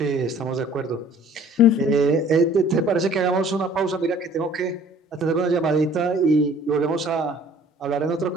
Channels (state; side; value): normal; both; correlation 0.53